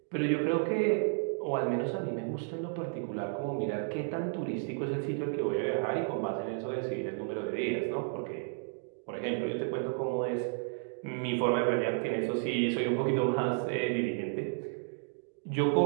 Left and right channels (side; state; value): left; silent; 56 dB below the other